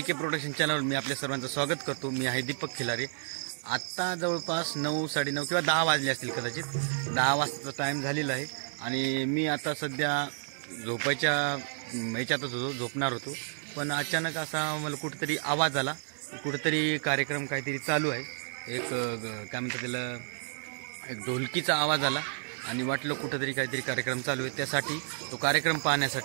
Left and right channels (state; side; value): silent; left; digital silence